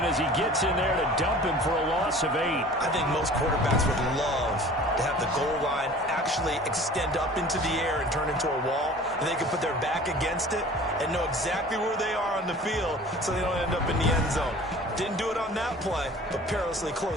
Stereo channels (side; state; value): both; normal; correlation 0.44